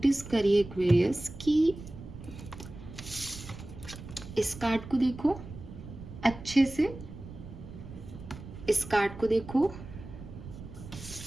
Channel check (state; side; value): noise; right; rumble, 13 dB below the sound